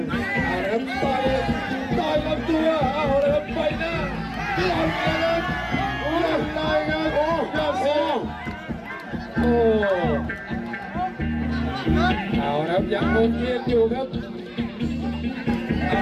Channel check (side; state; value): both; identical; correlation 1.00